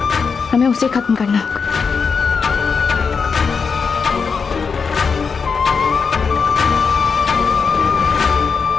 हमें उसे खत्म करना होगा।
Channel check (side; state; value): right; quieter; 5.5 dB